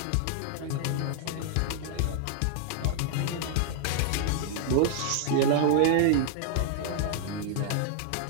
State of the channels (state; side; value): different; both; correlation 0.00